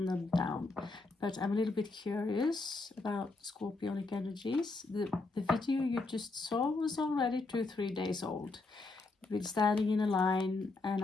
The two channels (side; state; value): right; quieter; 3.5 dB